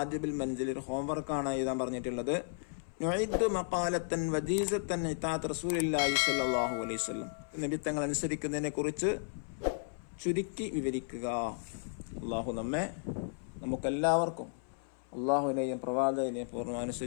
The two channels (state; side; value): silent; right; 55 dB below the other